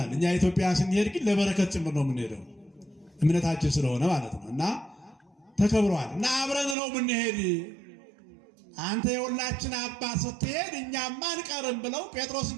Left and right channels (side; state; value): left; drops out; at 6.8 s